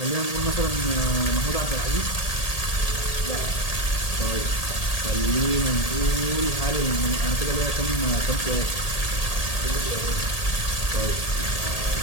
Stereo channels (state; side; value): late; right; 1.8 ms